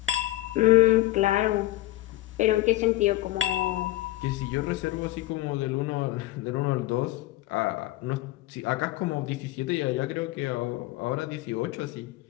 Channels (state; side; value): quieter; right; 16.9 dB